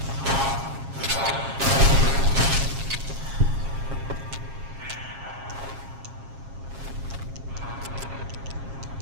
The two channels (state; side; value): late; left; 7.4 ms